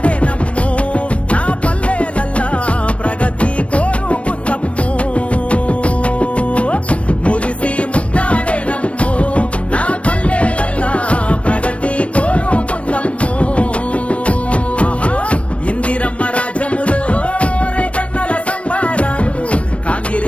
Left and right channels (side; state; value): right; late; 0.062 ms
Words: నమ్మో నా పల్లెలల్లా ప్రగతి కోరుకుందమ్మో. మురిసి ముద్దాడే నమ్మో నా పల్లెలల్లా ప్రగతి కోరుకుందమ్మో. ఇందిరమ్మ రాజ్యములో రైతన్నల సంబారాలు,